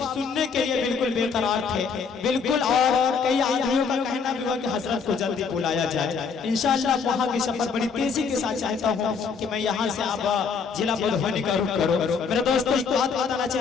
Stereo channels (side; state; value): right; quieter; 5.7 dB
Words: सुनने के लिए बिल्कुल बेकरार थे, बिल्कुल, और कई आदमियों का कहना भी हुआ कि हजरत को जल्दी बुलाया जाए। इंशाअल्लाह वहाँ की सफर बड़ी तेजी के साथ चाहता हूँ कि मैं यहाँ से आप जिला मधुबनी का रुख करो। मेरे दोस्तों एक बात बताना